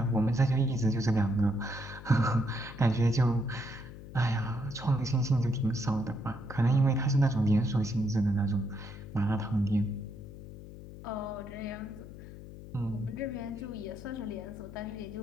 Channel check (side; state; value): left; noise; hum, 14 dB below the sound